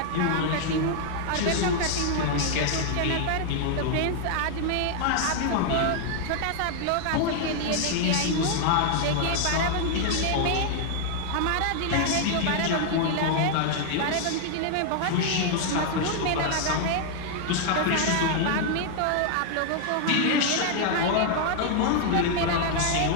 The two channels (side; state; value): both; different; correlation 0.00